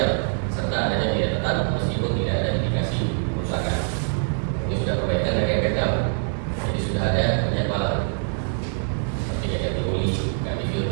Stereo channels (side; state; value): left; silent; digital silence